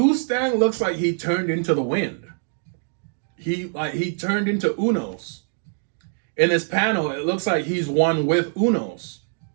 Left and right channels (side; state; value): left; silent; digital silence